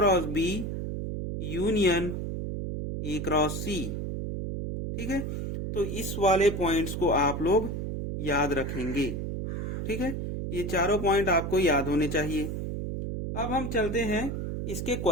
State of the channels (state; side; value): noise; right; hum, 4 dB below the sound